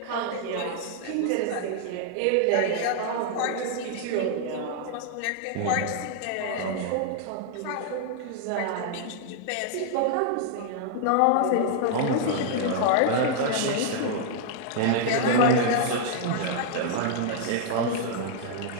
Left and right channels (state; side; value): different; both; correlation -0.01